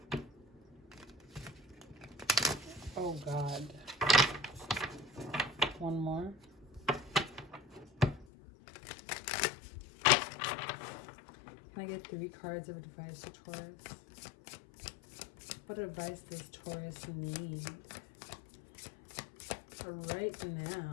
Oh God. One more. Can I get 3 cards of advice to Taurus? What advice does Taurus need right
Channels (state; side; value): drops out; right; at 8.2 s